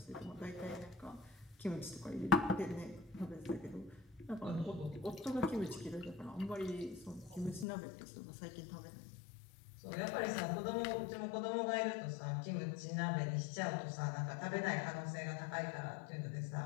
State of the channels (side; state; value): right; drops out; at 7.7 s